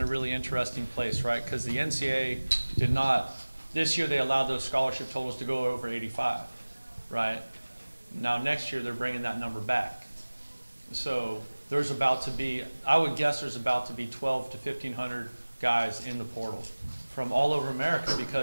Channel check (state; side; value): inverted; both; correlation -1.00